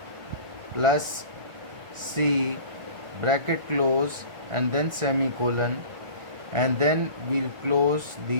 plus C bracket close and then semicolon, and then we'll close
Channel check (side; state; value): left; late; 1.4 ms